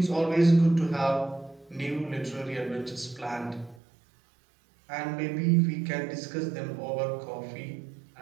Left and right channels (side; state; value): left; drops out; at 3.8 s